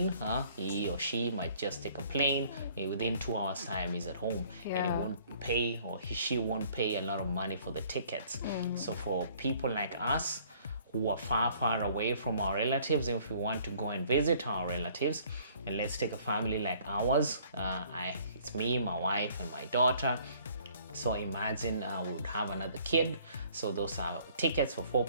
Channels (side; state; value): both; inverted; correlation -0.58